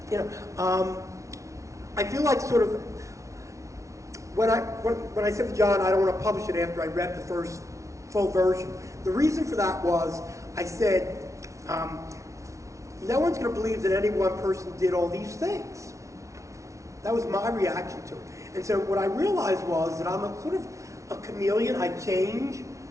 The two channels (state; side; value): late; left; 0.15 ms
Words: You know, I feel like sort of, when I said to John, I don't want to publish it after I read the first full version, the reason for that was I said, no one's going to believe that any one person did all these things. That was my reaction to it. And so what I realized was that I'm a sort of a chameleon. I change